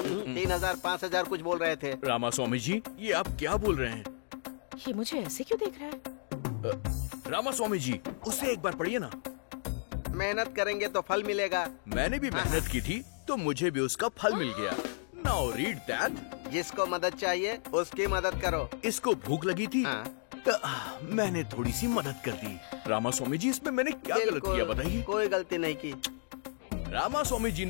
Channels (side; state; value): right; silent; digital silence